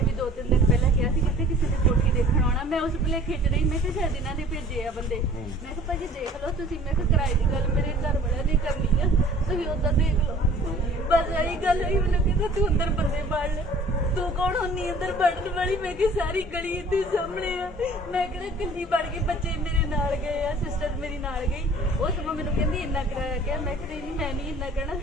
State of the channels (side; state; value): both; normal; correlation 0.49